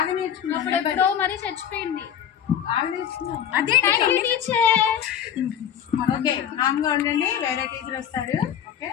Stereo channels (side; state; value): right; quieter; 9.4 dB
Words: నేర్చుకున్నావు. అప్పుడెప్పుడో మరి చచ్చిపోయింది. బాగా నేర్చుకున్నావు. అదే టీచర్. ఓకే, కామ్గా ఉండండి, వేరే టీచర్ వస్తారు. Okay,